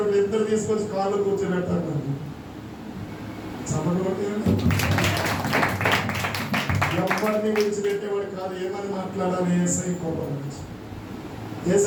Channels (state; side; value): identical; both; correlation 1.00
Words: 2 తీసుకొచ్చి కాళ్ళు కూర్చోబెట్టాడు. చప్పట్లు కొట్టేయండి. ఎవరిని విడిచిపెట్టేవాడు కాదు. ఏమని మాట్లాడాలి? ఏసై కోపం నుంచి